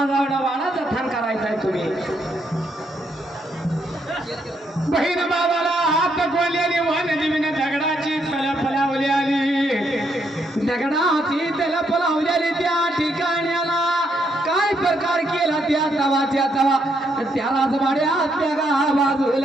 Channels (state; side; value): normal; both; correlation 0.76